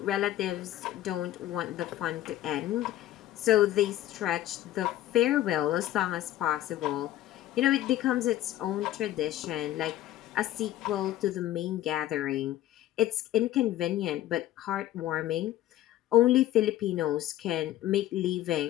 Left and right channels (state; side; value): quieter; right; 13.7 dB